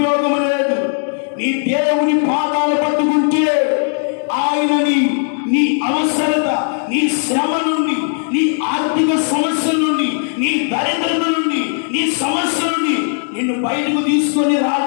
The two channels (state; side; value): silent; right; 57 dB below the other